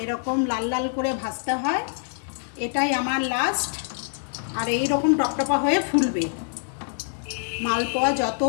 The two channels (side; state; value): right; silent; digital silence